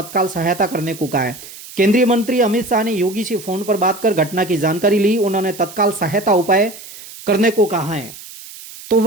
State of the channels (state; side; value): noise; right; hiss, 16 dB below the sound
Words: सहायता करने को कहा है। केंद्रीय मंत्री अमित शाह ने योगी से फोन पर बात कर घटना की जानकारी ली। उन्होंने तत्काल सहायता उपाय करने को कहा है। तो